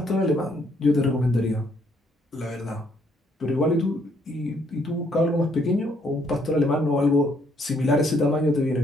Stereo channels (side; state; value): both; normal; correlation 0.69